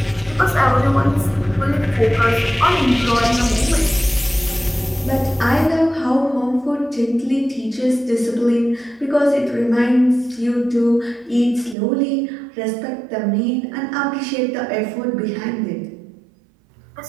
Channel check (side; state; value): left; drops out; at 11.8 s